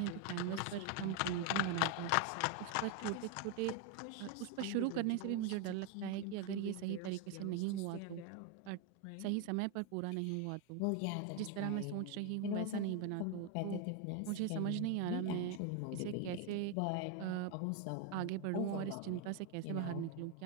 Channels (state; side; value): different; both; correlation 0.01